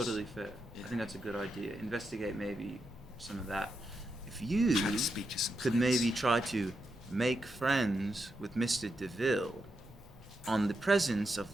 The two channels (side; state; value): both; normal; correlation 0.85